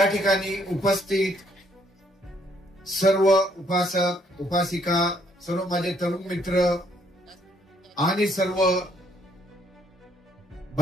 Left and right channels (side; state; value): both; normal; correlation 0.68